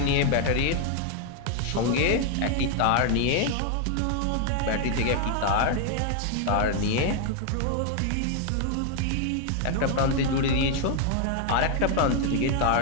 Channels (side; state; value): both; different; correlation 0.00